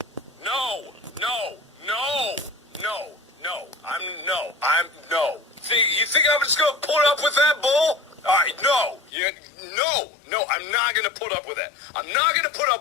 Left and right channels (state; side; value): drops out; right; at 9.1 s